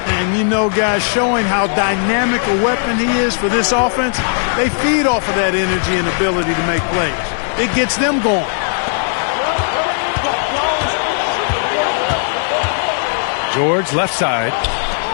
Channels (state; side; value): silent; right; 58 dB below the other